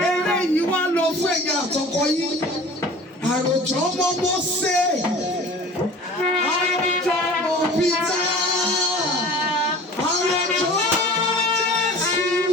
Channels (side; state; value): both; normal; correlation 0.42